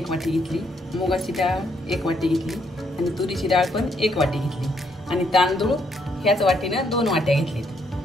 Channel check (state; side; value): normal; both; correlation 0.73